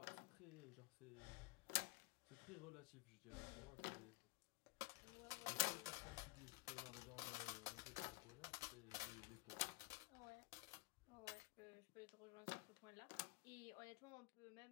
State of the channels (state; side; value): quieter; right; 24.7 dB